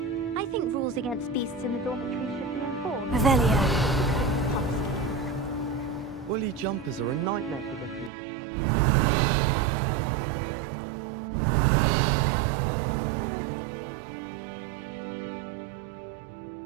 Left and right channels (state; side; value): drops out; left; at 8.1 s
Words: I think rules against beasts in the dormitory should be enforced. Revelio. Bully jumpers are a nightmare for the field. She's always showing off about her puppy.